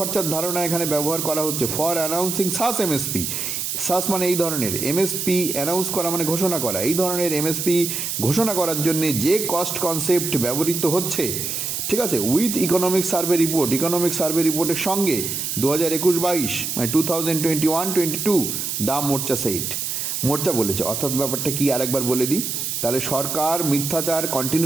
ধারণা এখানে ব্যবহার করা হচ্ছে, ফর অ্যানাউন্সিং সাস এমএসপি, সাস মানে এই ধরনের, এমএসপি অ্যানাউন্স করা মানে ঘোষণা করা, এই ধরনের এমএসপি ঘোষণা করার জন্য যে কস্ট কনসেপ্ট ব্যবহৃত হচ্ছে, ঠিক আছে, উইথ ইকোনমিক সার্ভে রিপোর্টের সঙ্গে 2021-22 মানে 2021-22 দা মোর্চা বলেছে। অর্থাৎ ব্যাপারটা কি আরেকবার বলে দিই, তাহলে সরকার মিথ্যাচার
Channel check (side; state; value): right; noise; hiss, 3 dB below the sound